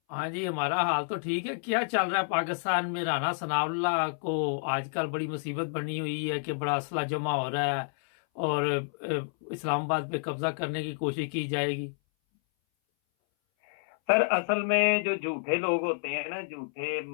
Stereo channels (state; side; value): silent; right; 58 dB below the other